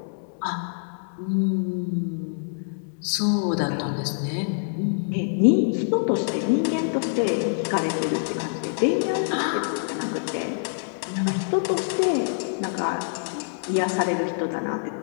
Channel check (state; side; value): silent; right; digital silence